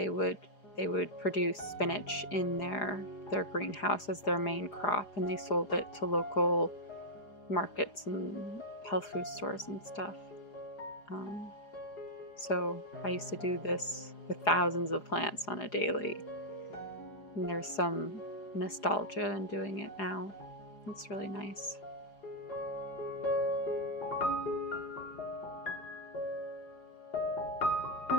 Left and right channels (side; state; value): right; late; 4.9 ms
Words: would produce spinach in their greenhouse as their main crop, and they sold it to local markets and health food stores and stuff. So I used to do this with thousands of plants on a daily, and there's some nostalgia in doing it now. It's really nice.